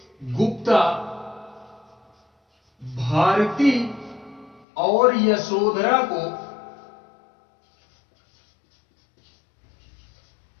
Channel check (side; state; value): right; drops out; at 4.7 s